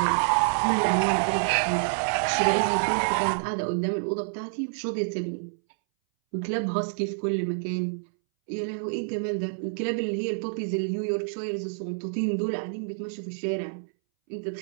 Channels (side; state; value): left; silent; 60 dB below the other